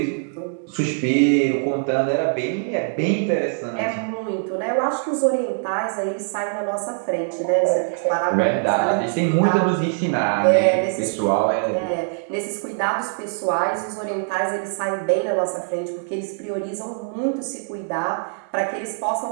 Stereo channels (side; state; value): left; silent; digital silence